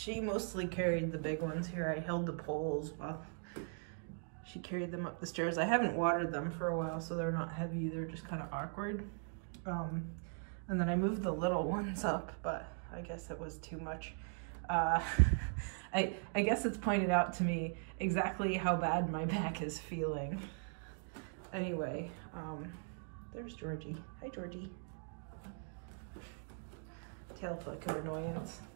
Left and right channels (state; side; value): silent; left; 51 dB below the other